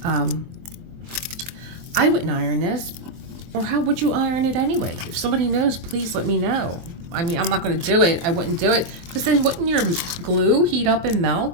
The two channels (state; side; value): late; left; 24 ms